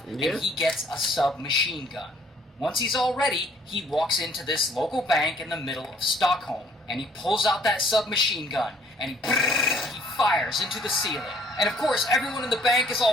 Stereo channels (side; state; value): both; normal; correlation 0.60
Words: Yeah. and he gets a submachine gun. Once he's all ready, he walks into this local bank in the middle of Stockholm, and he pulls out that submachine gun, and he fires into the ceiling. And of course, everyone in the bank is